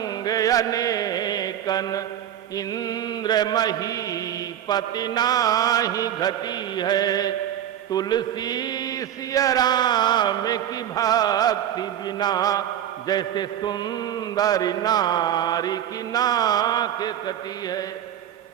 अनेकन, इंद्र महीपति नाही घटी है। तुलसी सिया राम की भक्ति बिना, जैसे सुंदर नारी की नाक कटी है।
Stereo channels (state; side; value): quieter; left; 10.7 dB